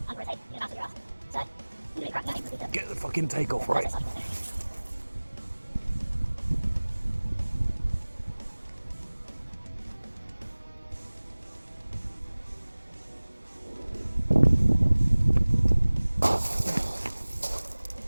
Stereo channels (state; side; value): inverted; both; correlation -1.00